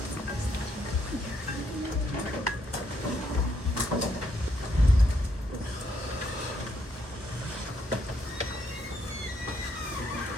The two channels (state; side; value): normal; both; correlation 0.74